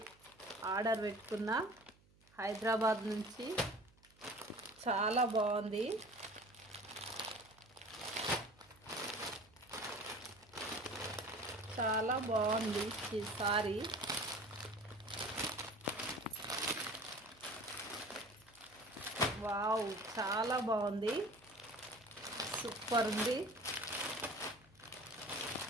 order పెట్టుకున్న హైదరాబాద్ నుంచి. చాలా బాగుంది. చాలా బాగుంది ఈ శారీ. వావ్, చాలా బాగుంది. సూపర్ ఉంది.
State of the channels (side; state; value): right; noise; hum, 29 dB below the sound